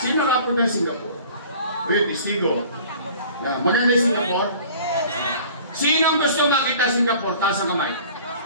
Sino kapag na Singapore? Uy, testigo. Maganda yung Singapore? Sino ang gusto makita Singapore? Taas ang kamay.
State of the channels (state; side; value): inverted; both; correlation -0.47